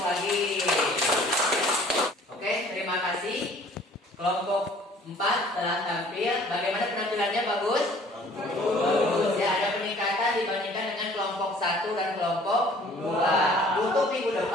lagi. Oke, terima kasih. Kelompok 4 telah tampil. Bagaimana penampilannya? Bagus? Bagus ya, ada peningkatan dibandingkan dengan kelompok 1 dan kelompok 2. Untuk minggu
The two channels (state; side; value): normal; both; correlation 0.53